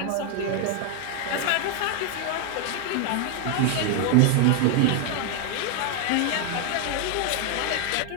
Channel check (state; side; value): different; both; correlation 0.01